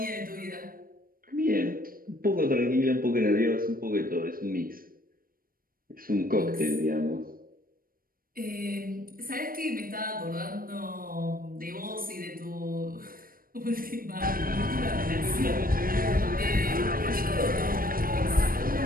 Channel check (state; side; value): late; left; 0.41 ms